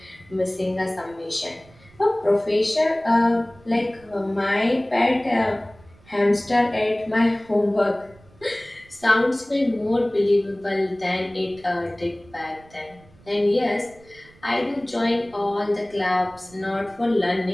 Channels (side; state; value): right; noise; rumble, 26 dB below the sound